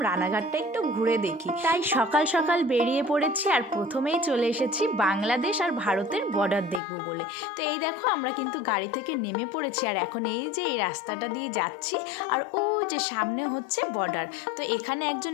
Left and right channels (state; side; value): drops out; right; at 6.8 s